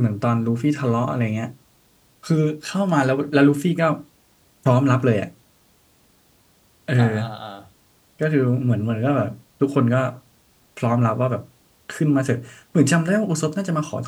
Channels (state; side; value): identical; both; correlation 1.00